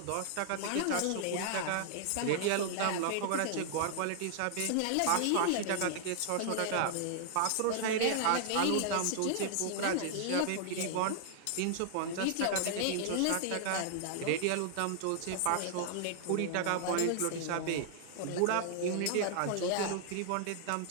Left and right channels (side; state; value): both; different; correlation -0.01